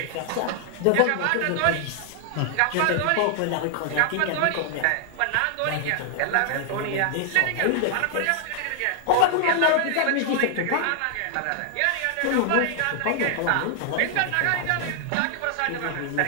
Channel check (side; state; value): both; different; correlation 0.00